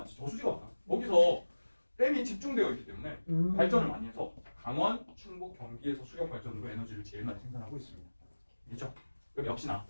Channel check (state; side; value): inverted; both; correlation -1.00